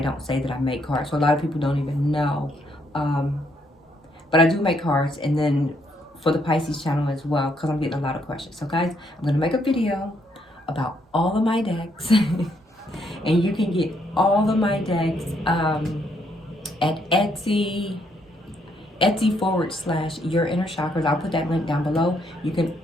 don't say that I make cards. So a lot of people don't even know. But I do make cards, and then for the Pisces channel as well, because I'm getting a lot of questions. So guys, I'm going to make a video about all of my decks. And you can get all of my decks at Etsy Your Inner Chakras. I'll put that link down below. You can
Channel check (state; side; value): normal; both; correlation 0.73